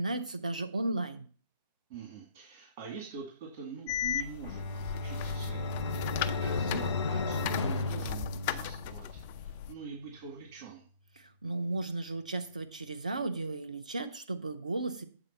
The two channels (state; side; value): inverted; both; correlation -0.59